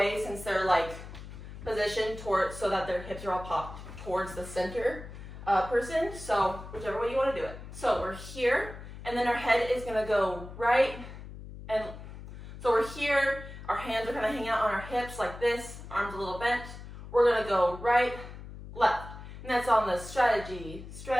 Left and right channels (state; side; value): noise; left; hum, 13 dB below the sound